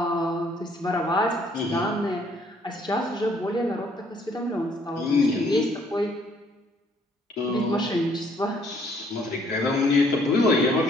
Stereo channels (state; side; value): normal; both; correlation 0.64